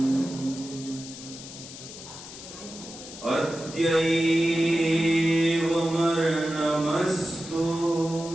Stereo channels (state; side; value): noise; left; hiss, 13 dB below the sound